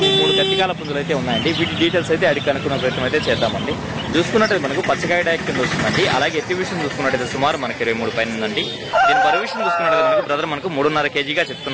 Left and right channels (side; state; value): both; identical; correlation 1.00